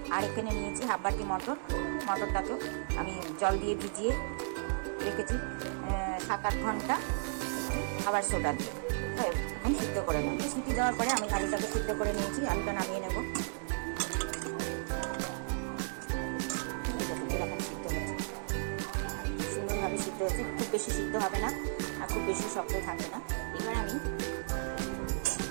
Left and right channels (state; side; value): silent; left; 55 dB below the other